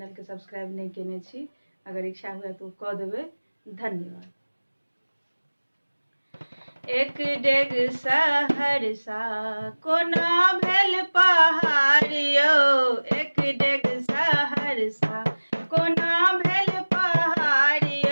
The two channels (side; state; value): both; inverted; correlation -1.00